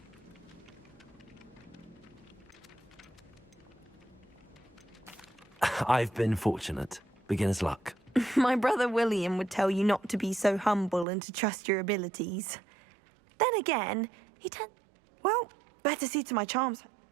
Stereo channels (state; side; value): drops out; left; at 11.1 s